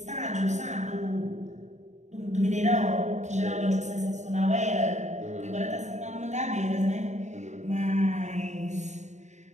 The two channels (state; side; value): late; left; 0.34 ms